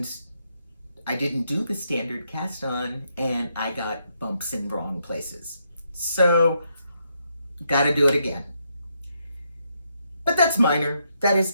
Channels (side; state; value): both; inverted; correlation -0.78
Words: I didn't do the standard cast on, and I got bumps in wrong places. So, gotta do it again. But that's minor. That